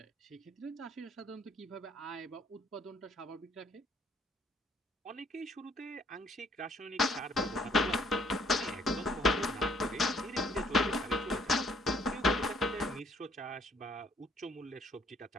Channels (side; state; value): both; normal; correlation 0.63